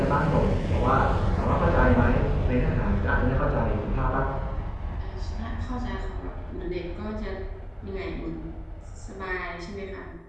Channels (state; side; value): identical; both; correlation 1.00